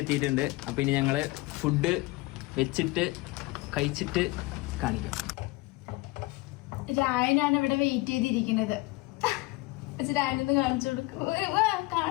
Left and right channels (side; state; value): right; quieter; 22.0 dB